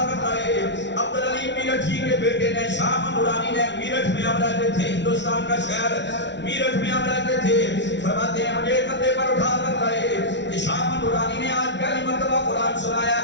کر لائے. عبدالعلی میرٹھی کے بیٹے نے، شاہ احمد نورانی نے، میرٹھ میں ہم رہتے تھے، ہندوستان کا شہر میرٹھ میں ہم رہتے تھے. فرماتے ہیں مجھے کندھے پر اٹھا کر لائے کہ شاہ احمد نورانی نے آج پہلی مرتبہ قرآن سنایا.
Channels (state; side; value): late; right; 0.51 ms